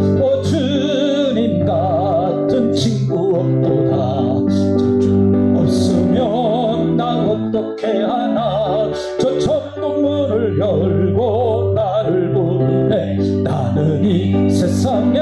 오 주님 같은 친구 없도다. 저 주 없으면 나 어떻게 하나. 저 천국 문을 열고 나를 부르네. 나는 이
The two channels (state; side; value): identical; both; correlation 1.00